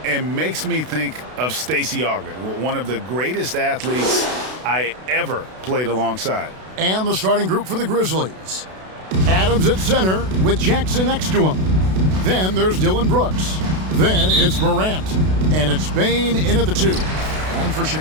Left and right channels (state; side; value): late; left; 32 ms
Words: And makes me think of Stacey Augmon, one of the greatest athletes I ever played alongside. And the starting group for the Grizzlies. Adams at center with Jackson next to him. Then there's Dylan Brooks. Then it's Morant. And it's Bane in at the 2. And for